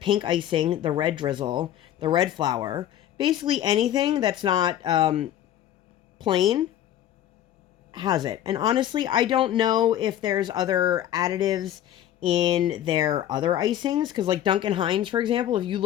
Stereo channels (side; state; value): right; quieter; 11.7 dB